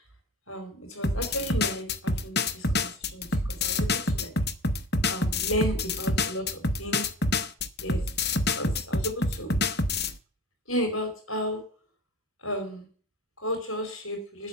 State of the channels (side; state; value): both; normal; correlation 0.38